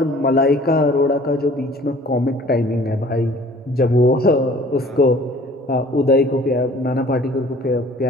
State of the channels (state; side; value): normal; both; correlation 0.51